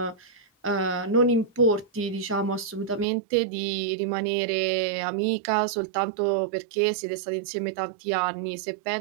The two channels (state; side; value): drops out; left; at 3.1 s